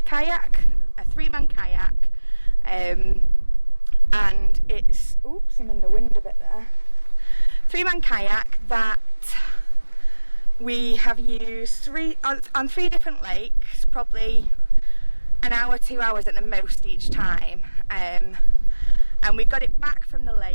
kayak, a 3-man kayak, and it's, oops, I'm in the wind a bit there, 3-man kayak that we have used on 3 different lakes, probably an hour, 2 hours at the most each time, and we got it back from the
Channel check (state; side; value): inverted; both; correlation -1.00